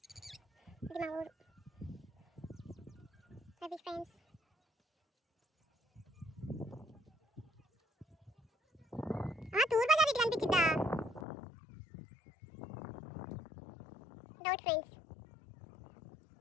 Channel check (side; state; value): right; drops out; at 11.2 s